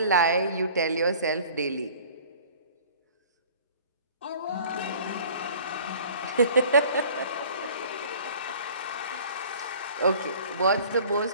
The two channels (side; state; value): both; inverted; correlation -0.48